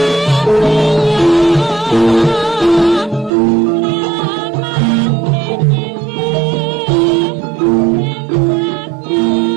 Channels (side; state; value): left; drops out; at 3.3 s